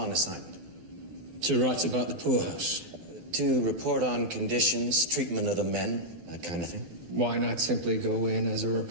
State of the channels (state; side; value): late; left; 12 ms